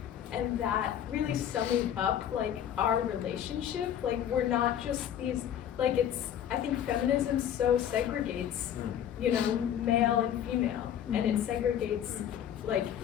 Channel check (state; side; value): quieter; right; 10.0 dB